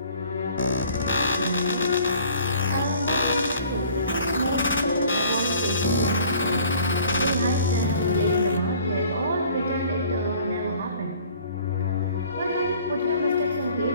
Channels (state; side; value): inverted; both; correlation -0.53